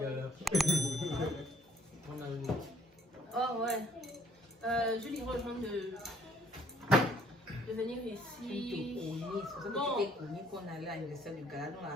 là. On a une. Oh ouais. Je lui rejoins de venir Tu te ici. connais. C'est pour ça que Bon. tu t'es connu qu'on allait à l'anniversaire du gala dans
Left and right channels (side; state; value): both; normal; correlation 0.63